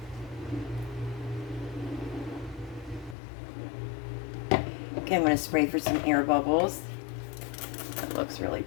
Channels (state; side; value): drops out; right; at 3.2 s